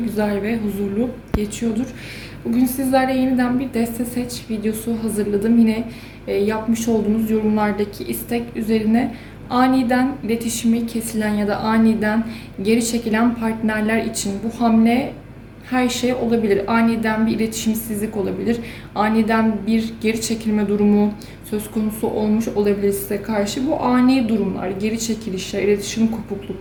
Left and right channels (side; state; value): both; identical; correlation 1.00